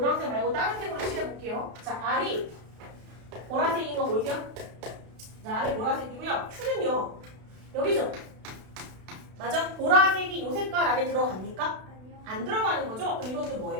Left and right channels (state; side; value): late; left; 32 ms